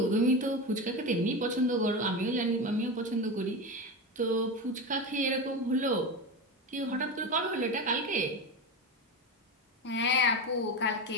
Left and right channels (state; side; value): normal; both; correlation 0.21